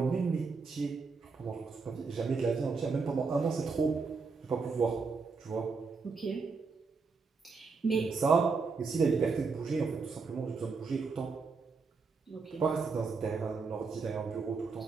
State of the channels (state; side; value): quieter; left; 4.7 dB